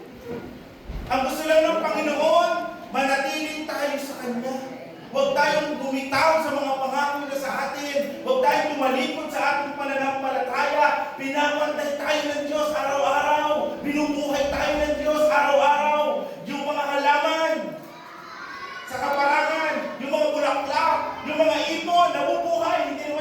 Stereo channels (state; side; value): identical; both; correlation 1.00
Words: Ang gusto lang ng Panginoon, manatiling tayo sa Kanya. Huwag tayong bumitaw sa mga pangako na sa atin. Huwag tayong tumalikod sa ating pananampalataya. Pinapantay tayo ng Diyos araw-araw. Binubuhay tayo ng Diyos araw-araw. Yung mga halaman sa kaparangan, yung mga bulaklak, yung mga ibon, nabubuhay, hindi